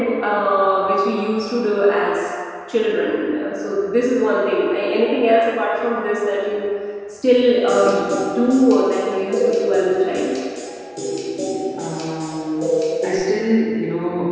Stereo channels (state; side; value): identical; both; correlation 1.00